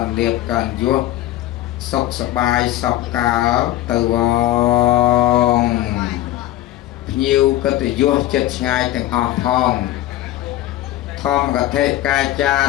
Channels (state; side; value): quieter; right; 14.6 dB